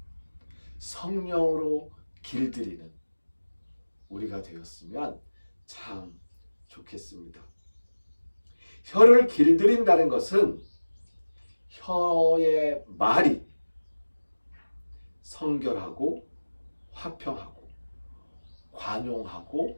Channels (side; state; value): both; inverted; correlation -1.00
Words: 성령으로 길들이는 우리가 되었으면 참 좋겠습니다. 혀를 길들인다는 것은 혀의 말이 성결하고 화평하고